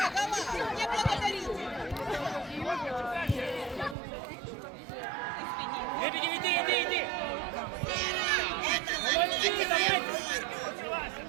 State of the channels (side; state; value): left; drops out; at 4.0 s